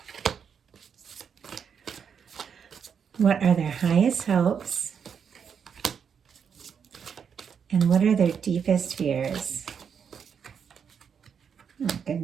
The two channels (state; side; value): quieter; left; 7.1 dB